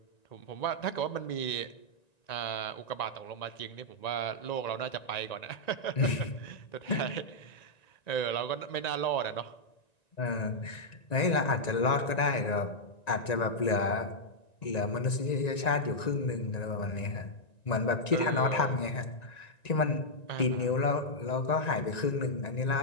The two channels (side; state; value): right; late; 1.9 ms